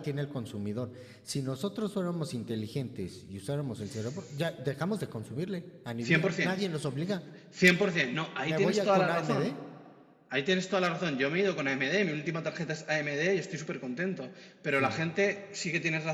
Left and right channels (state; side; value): identical; both; correlation 1.00